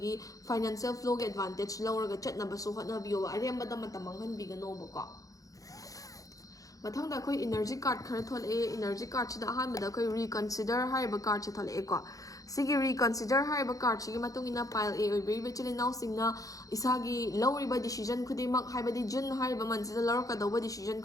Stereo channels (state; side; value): late; right; 0.17 ms